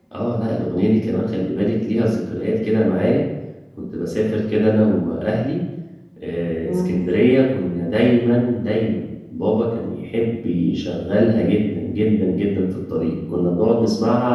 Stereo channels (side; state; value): both; identical; correlation 1.00